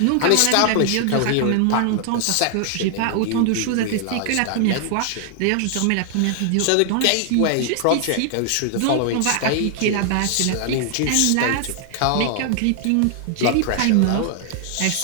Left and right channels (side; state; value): both; different; correlation 0.00